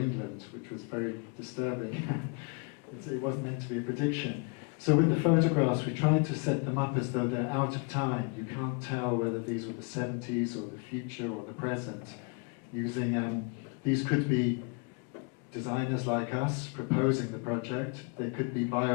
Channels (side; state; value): right; quieter; 31.3 dB